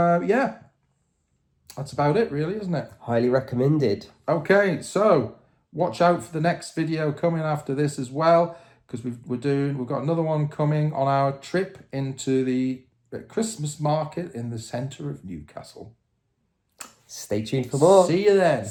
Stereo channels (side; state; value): both; identical; correlation 1.00